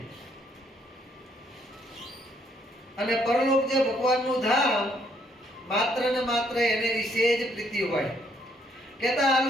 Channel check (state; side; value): normal; both; correlation 0.69